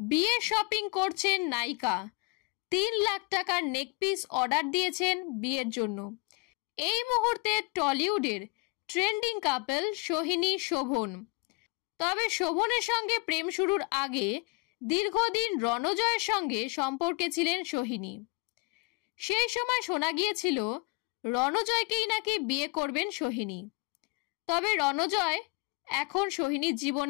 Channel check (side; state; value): right; quieter; 29.0 dB